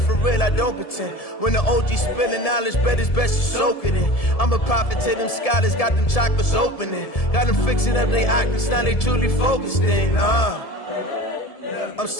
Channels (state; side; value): late; right; 1.7 ms